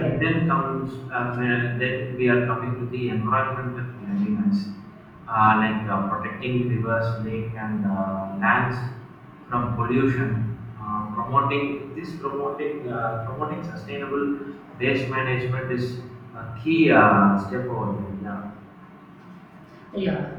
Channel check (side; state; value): both; identical; correlation 1.00